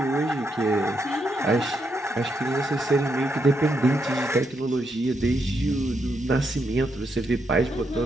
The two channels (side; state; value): both; normal; correlation 0.80